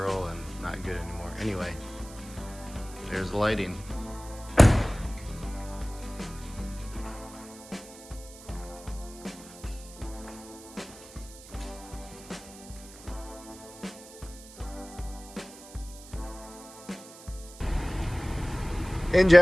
and not good anymore. Anyway, there's the lighting. In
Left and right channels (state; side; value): noise; right; hiss, 18 dB below the sound